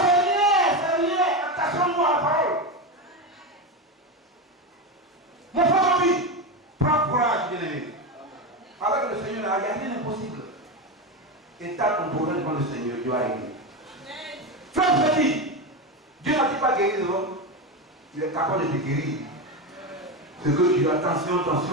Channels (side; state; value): both; normal; correlation 0.16